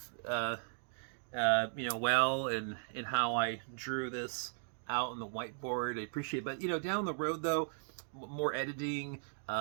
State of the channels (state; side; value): silent; left; digital silence